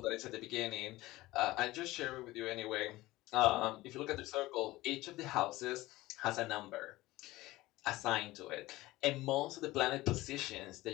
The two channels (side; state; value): right; quieter; 18.4 dB